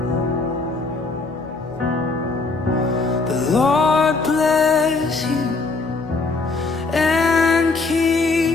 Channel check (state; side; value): quieter; right; 3.8 dB